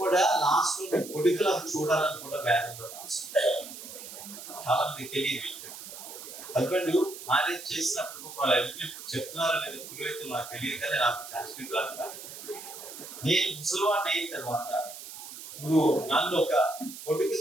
లాస్ట్ లో కొడుకులకు చూడాలని కూడా వేదంలో రాస్తుంది. చాలా మంది తెలియని విషయం. హస్బెండ్ మ్యారేజ్ చేసినప్పుడు వాళ్ళు చెప్తున్నారో లేదా పురోహితులు నాకు తెలియదు, కానీ నాకు సంస్కృతి రాదు. నేను ముసలివాడిని అయిన తర్వాత నువ్వు నన్ను ఒక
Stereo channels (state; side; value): noise; right; hiss, 12 dB below the sound